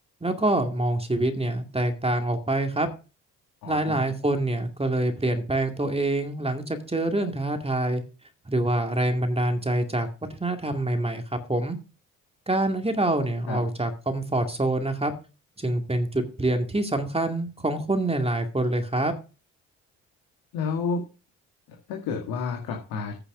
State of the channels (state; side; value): normal; both; correlation 0.63